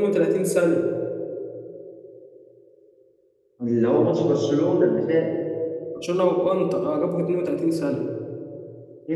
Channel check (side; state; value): both; identical; correlation 1.00